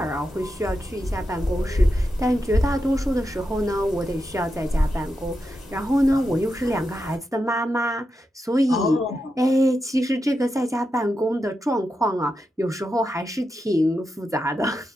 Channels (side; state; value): both; normal; correlation 0.87